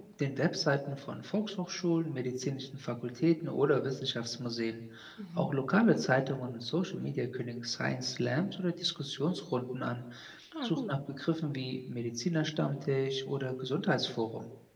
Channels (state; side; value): identical; both; correlation 1.00